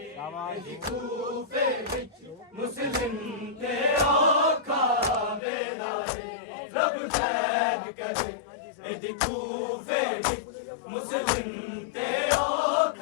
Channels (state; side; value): drops out; right; at 5.4 s